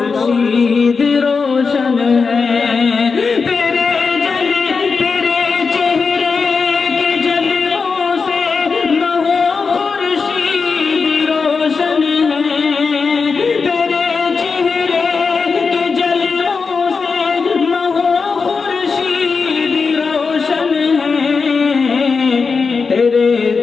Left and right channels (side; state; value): right; quieter; 5.0 dB